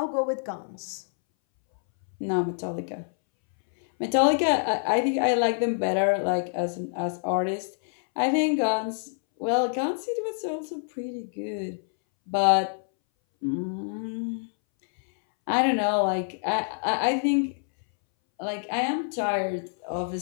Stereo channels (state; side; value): silent; right; 61 dB below the other